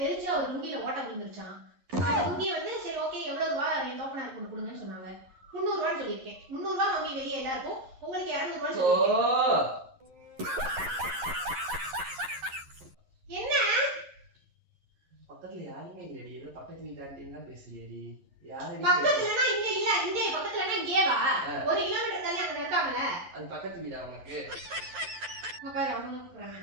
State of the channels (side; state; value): left; late; 11 ms